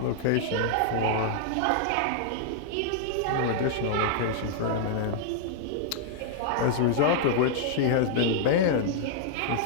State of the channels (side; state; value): both; different; correlation -0.01